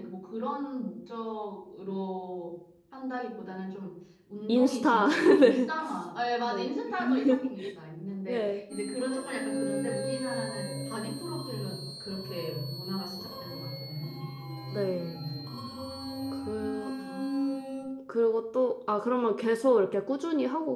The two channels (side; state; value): both; identical; correlation 1.00